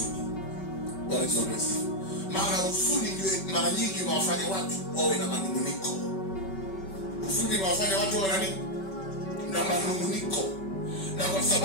Maana huzuni ndio mara nyingi inawafanya watu wawe na manunguniko. Huzuni inawafanya watu wawe na nini? Na manunguniko. Na kwa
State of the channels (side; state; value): right; late; 5.2 ms